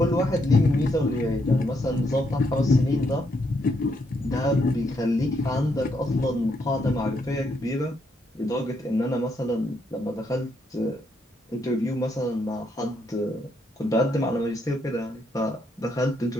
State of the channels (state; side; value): normal; both; correlation 0.76